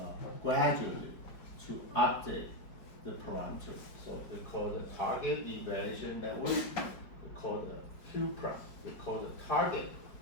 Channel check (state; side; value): late; right; 5.0 ms